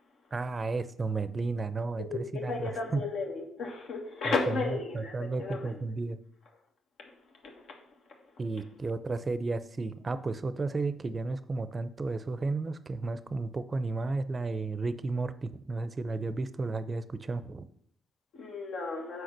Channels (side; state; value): both; normal; correlation 0.84